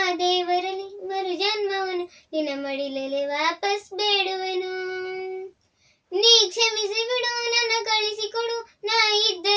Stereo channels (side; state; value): both; identical; correlation 1.00